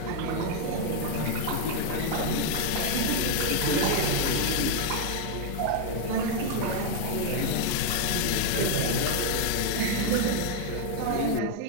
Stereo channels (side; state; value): both; different; correlation 0.00